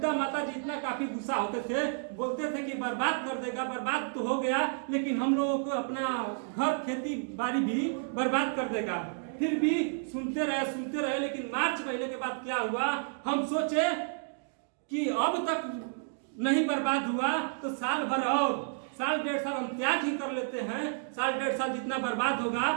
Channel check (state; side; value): silent; left; digital silence